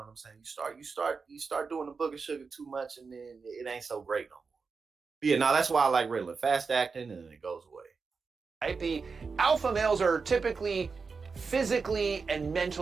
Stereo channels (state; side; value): quieter; left; 4.9 dB